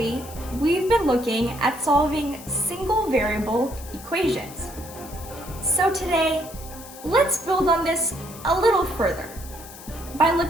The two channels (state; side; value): noise; left; hiss, 16 dB below the sound